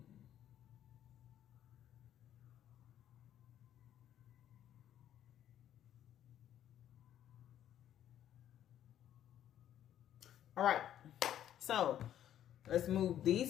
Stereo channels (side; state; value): right; quieter; 11.1 dB